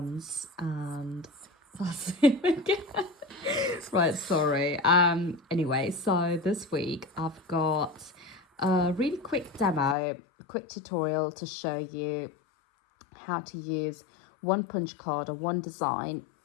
and that's him again. Right, sorry. Anyway, so this week I've got a really quick demo, a quick tutorial to show you how to use one punch card or one design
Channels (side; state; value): right; drops out; at 10.0 s